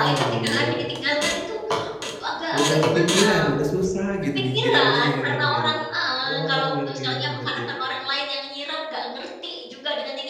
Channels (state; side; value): identical; both; correlation 1.00